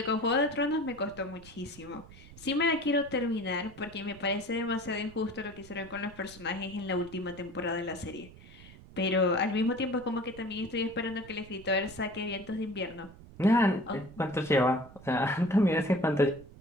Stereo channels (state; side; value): noise; right; rumble, 19 dB below the sound